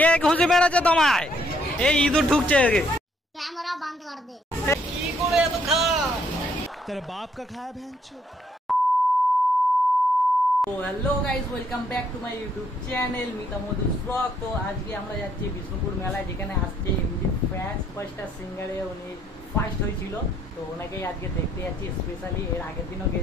খুঁজে বেড়াচ্ছে তোমায়? এই ইঁদুর ঢুকছে। कैमरा बंद कर दे। কি করে এত খা? तेरे बाप का खाया भैंचोद। তো hello guys, welcome back to my YouTube channel Mita Madhu's blog. তো আজকে আমরা যাচ্ছি বিষ্ণুপুর মেলায়, যেখানে আজকে এমডি ফ্যান্স ফার্স্টটা সিঙ্গারে উনি ফার্স্ট হয়েছিল। তো ওনাকেই আজকে দেখতে যাচ্ছি স্পেশালি। এর আগের দিনও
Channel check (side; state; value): both; normal; correlation 0.69